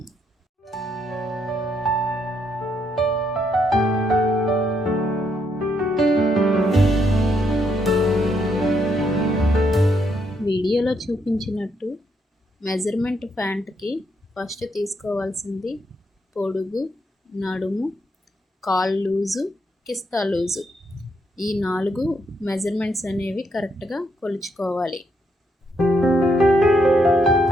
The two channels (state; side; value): normal; both; correlation 0.76